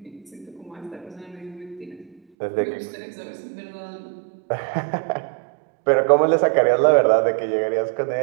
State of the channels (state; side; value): drops out; left; at 2.2 s